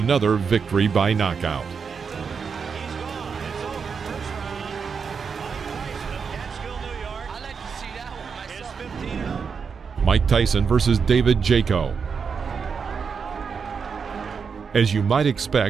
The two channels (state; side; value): quieter; left; 5.9 dB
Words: victory by knockout. Mike Tyson versus David Jaco. As you might